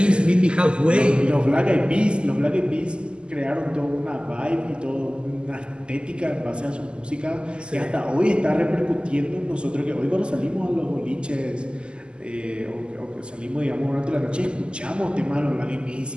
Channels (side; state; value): left; late; 0.050 ms